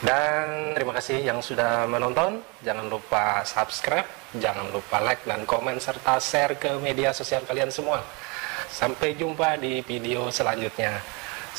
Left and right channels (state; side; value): quieter; left; 30.4 dB